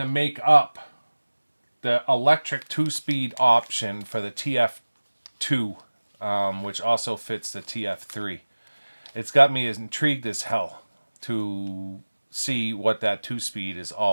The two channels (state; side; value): inverted; both; correlation -1.00